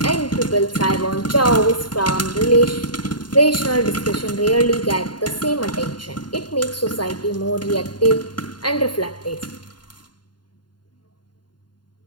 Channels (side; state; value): right; late; 0.71 ms